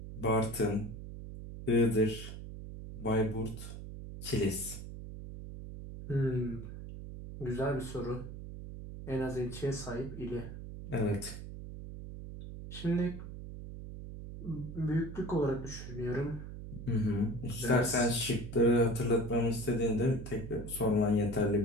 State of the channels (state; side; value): noise; right; hum, 10 dB below the sound